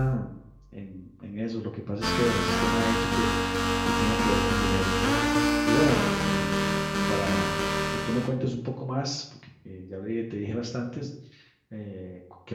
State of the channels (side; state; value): both; identical; correlation 1.00